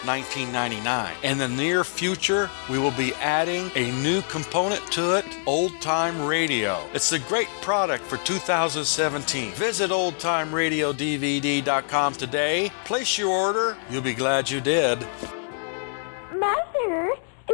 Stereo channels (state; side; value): silent; right; 62 dB below the other